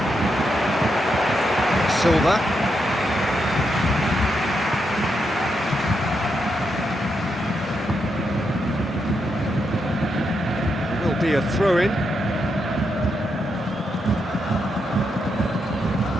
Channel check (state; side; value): normal; both; correlation 0.82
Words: Silva. Will be a throw-in.